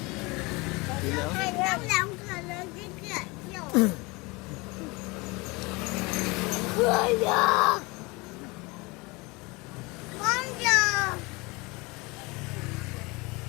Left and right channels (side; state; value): right; quieter; 25.3 dB